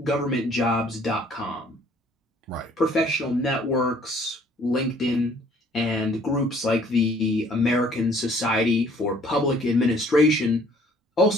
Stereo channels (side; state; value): both; normal; correlation 0.58